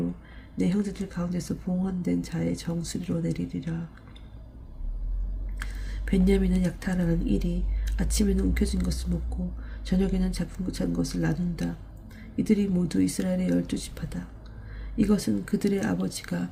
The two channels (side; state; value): both; identical; correlation 1.00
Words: 내 형제들 가운데서 봉헌된 자의 정수리로 내리리라. 벤야민은 약탈하는 일이 아침에는 움켜진 것을 먹고 저녁에는 잡은 것을 나눈다. 이들이 모두 이스라엘의 12지파다. 이것은 그들의 아버지가